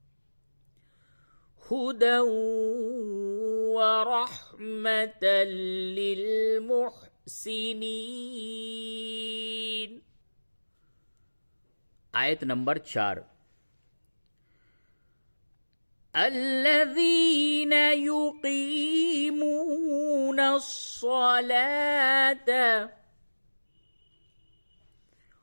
हुदन व रहमतन लिल मुहसिनीन। आयत नंबर 4। अल्लज़ीन युक़ीमून अस्सलात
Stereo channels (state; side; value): inverted; both; correlation -1.00